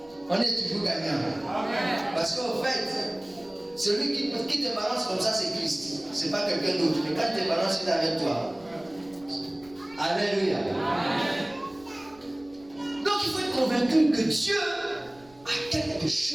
on est toujours gagnant. Parce qu'en fait, celui qui te balance comme ça, c'est Christ. C'est pas quelqu'un d'autre. Mais quand il te balance, il est avec toi. Alléluia. Donc il faut être convaincu que Dieu a quelque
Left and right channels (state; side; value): noise; right; rumble, 27 dB below the sound